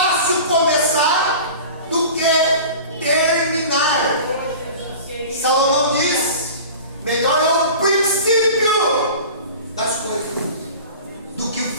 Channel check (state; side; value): inverted; both; correlation -0.38